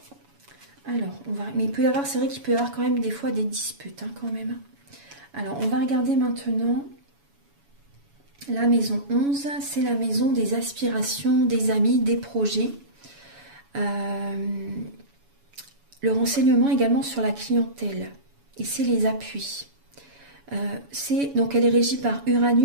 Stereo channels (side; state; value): left; late; 7.1 ms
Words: Alors, mais il peut y avoir, c'est vrai qu'il peut y avoir quand même des fois des disputes, quand même. Alors, on va regarder maintenant la maison 11. C'est la maison des aspirations, des amis, des projets. Le renseignement également sur la clientèle. Et c'est les appuis. Donc elle est régie par